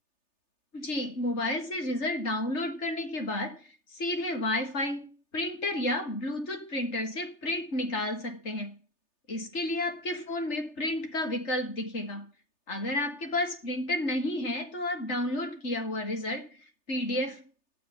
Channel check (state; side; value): late; right; 3.3 ms